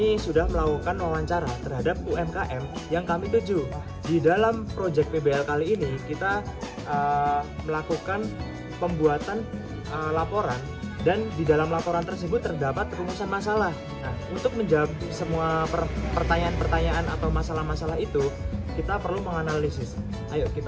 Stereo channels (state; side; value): identical; both; correlation 1.00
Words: sudah melakukan wawancara terhadap UMKM yang kami tuju. Di dalam Project PBL kali ini kita melakukan pembuatan laporan, dan di dalam laporan tersebut terdapat rumusan masalah. Nah, untuk menjawab semua pertanyaan-pertanyaan atau masalah-masalah itu, kita perlu menganalisis. Ayo